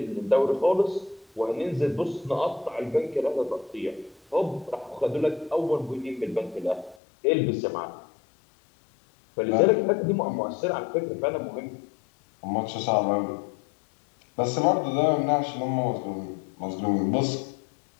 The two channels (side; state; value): right; drops out; at 7.0 s